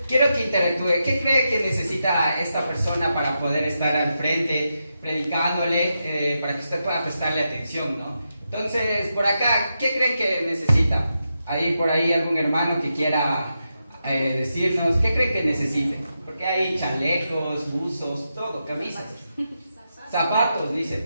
quiero que interactúe. ¿Qué cree que necesita esta persona para poder estar al frente, predicándole, para que usted pueda prestarle atención, ¿no? Entonces, por acá, ¿qué creen que necesita? Hay por ahí algún hermano que quiera decirnos, ¿qué creen que necesite? Porque hay chalecos, buzos, todo, camisas. Zapatos, dice,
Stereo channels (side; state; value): both; inverted; correlation -0.86